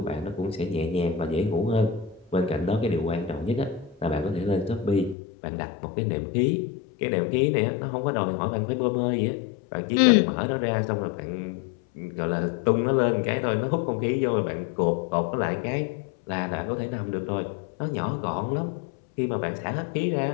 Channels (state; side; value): drops out; right; at 5.2 s